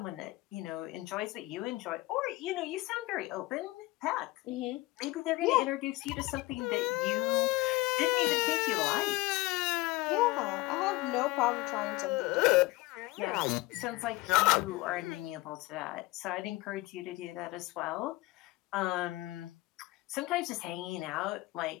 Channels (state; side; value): quieter; right; 20.9 dB